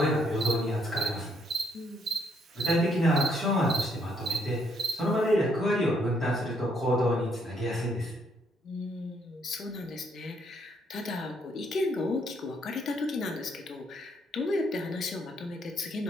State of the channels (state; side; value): normal; both; correlation 0.71